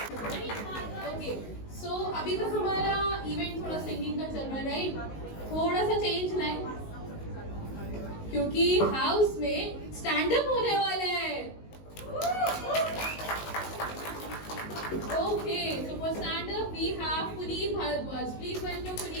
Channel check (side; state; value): right; late; 19 ms